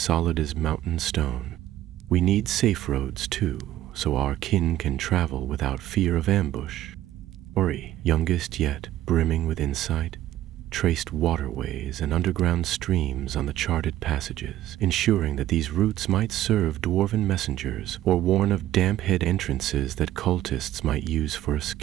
as mountain stone. "We need safe roads, too, so our kin can travel without fear of ambush." Ori, youngest yet brimming with insight, traced waterways and underground streams on the charted passages, ensuring that these routes might serve dwarven messengers or warn of damp-head entrances that cultists might use for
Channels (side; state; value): left; quieter; 13.6 dB